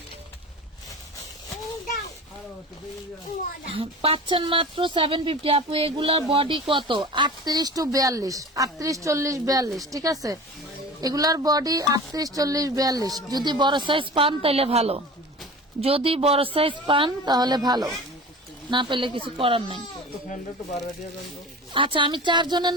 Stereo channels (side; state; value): both; normal; correlation 0.36